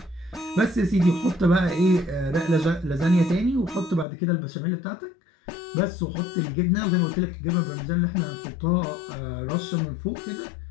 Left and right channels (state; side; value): drops out; right; at 4.0 s